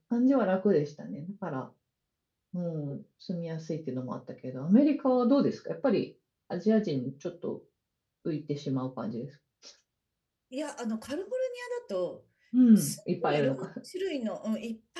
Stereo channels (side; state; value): both; identical; correlation 1.00